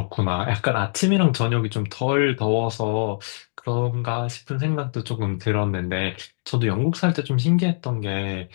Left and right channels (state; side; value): silent; right; digital silence